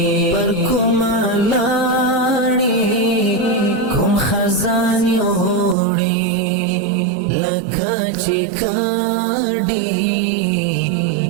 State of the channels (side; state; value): left; drops out; at 5.8 s